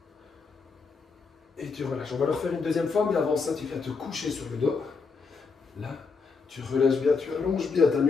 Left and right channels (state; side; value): quieter; right; 4.8 dB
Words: Et tu relâches. On va le refaire une deuxième fois, mais avant ça, tu viens te coucher sur le dos. Là, tu relâches bien, tu allonges bien ta